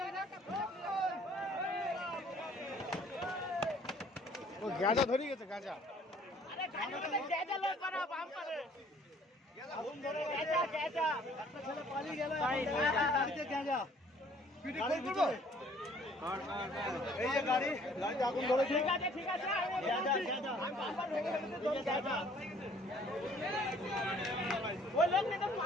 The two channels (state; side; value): normal; both; correlation 0.58